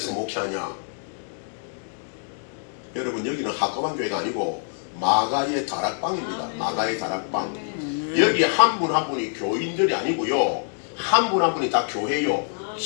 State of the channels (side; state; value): right; silent; 59 dB below the other